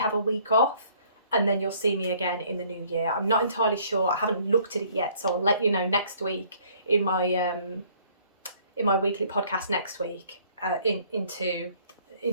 a week off, and then you'll see me again in the new year. I'm not entirely sure. I haven't looked at it yet, so I'll let you know next week in my weekly podcast next week.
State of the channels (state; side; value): inverted; both; correlation -0.59